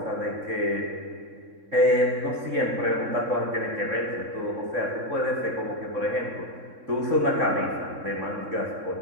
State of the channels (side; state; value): left; late; 3.6 ms